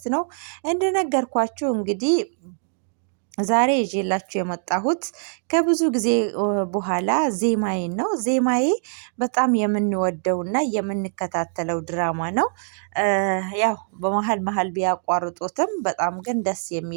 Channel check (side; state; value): left; silent; digital silence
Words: ነው። እንደነገርኳችሁ እንግዲህ ዛሬ ይዤላችሁ የመጣሁት ከብዙ ጊዜ በኋላ ዜማዬን ነው። ዜማዬ በጣም የምንወደውና የምንከታተለው ድራማ ነው። ያው በመሃል መሃል ቢያቋርጡትም በጣም ግን ደስ